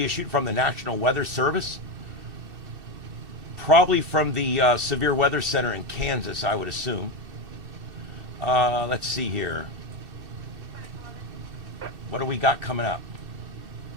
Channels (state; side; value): late; left; 2.7 ms